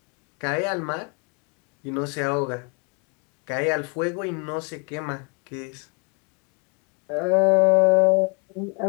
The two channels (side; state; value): right; quieter; 34.4 dB